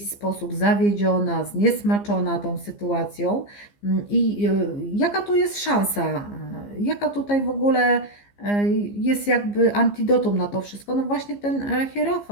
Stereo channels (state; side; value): late; right; 15 ms